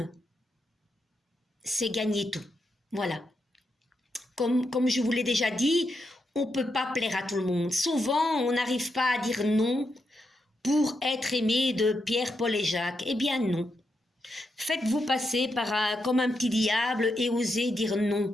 c'est gagner tout. Voilà. Comme je vous l'ai déjà dit, on ne peut pas plaire à tout le monde. Souvent, on n'arrive pas à dire non pour être aimé de Pierre, Paul et Jacques. Eh bien non. Faites-vous passer comme un petit diable et osez dire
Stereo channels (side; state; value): both; normal; correlation 0.83